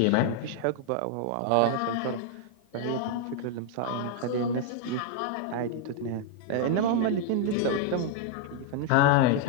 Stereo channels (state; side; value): different; both; correlation 0.00